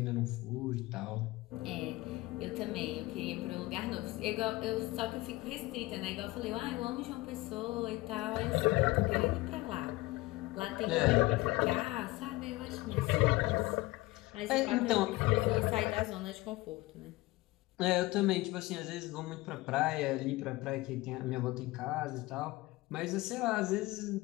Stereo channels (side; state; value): right; quieter; 20.2 dB